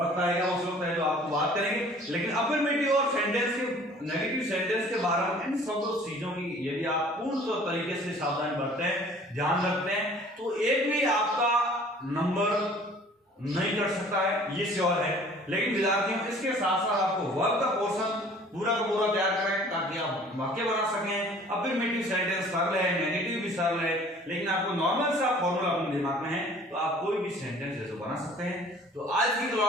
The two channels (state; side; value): normal; both; correlation 0.51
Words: आएगा उस वक्त है जो आपको बात करेंगे। लेकिन अफर्मेटिव और सेंटेंस के नेगेटिव सेंटेंस के बारे में इन सब चीजों की यदि आप पूर्ण तरीके से सावधानी बरतते हैं, ध्यान रखते हैं तो एक भी आपका नंबर नहीं कर सकता है, ये श्योर है। लेकिन विद्यार्थियों इसके साथ साथ आपको वर्क का पोर्शन पूरा का पूरा तैयार करें ताकि आप वाक्य बना सकें। अफर्मेटिव सेंटेंस सरल है, नेगेटिव भी सरल है, लेकिन आपको नॉर्मल सा फॉर्मूला अपने दिमाग में है तो आप कोई भी सेंटेंस ऐसे बना सकते हैं। तो आज की